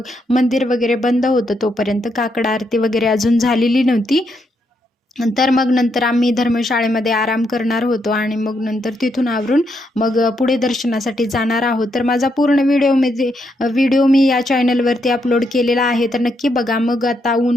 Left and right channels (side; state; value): both; normal; correlation 0.79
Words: मंदिर वगैरे बंद होतं, तोपर्यंत काकड आरती वगैरे अजून झालेली नव्हती. तर मग नंतर आम्ही धर्मशाळेमध्ये आराम करणार होतो आणि मग नंतर तिथून आवरून मग पुढे दर्शनासाठी जाणार आहोत. तर माझा पूर्ण व्हिडिओ मी या चॅनलवरती अपलोड केलेला आहे, तर नक्की बघा. मग आता